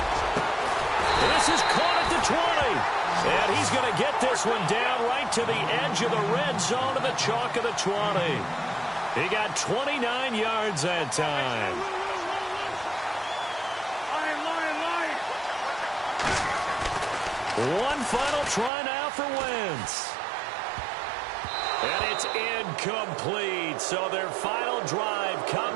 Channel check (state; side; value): drops out; left; at 18.7 s